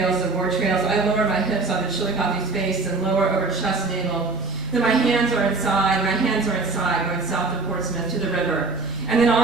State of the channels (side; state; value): left; quieter; 3.7 dB